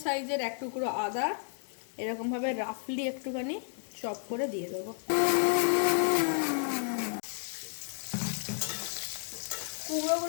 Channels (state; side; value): silent; right; 56 dB below the other